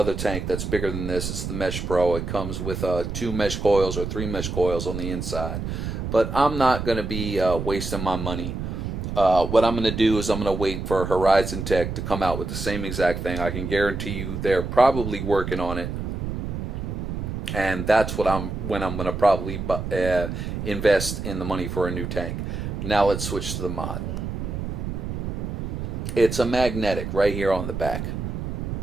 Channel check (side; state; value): right; noise; rumble, 4 dB below the sound